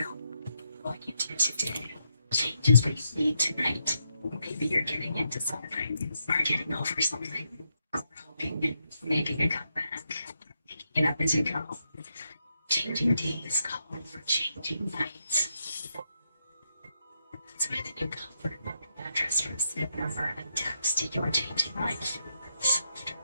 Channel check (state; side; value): inverted; both; correlation -0.81